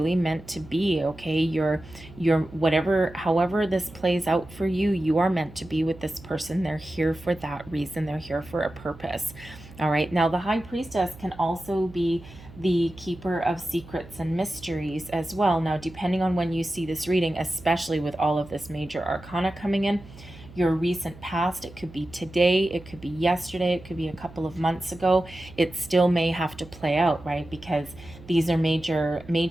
meant to be, okay. You're whatever, however this plays out for you, you are meant to be with this person. They're here for that reason. They're here for a purpose. All right. Now the High Priestess can also be the keeper of secrets and mysteries as well. Now, depending on when you see this reading, especially with all of this major arcana coming in, your recent past, it could be today, it could be yesterday, it could be a couple of months ago, it still may have to play out, right? Because these are major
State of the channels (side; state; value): right; noise; hum, 19 dB below the sound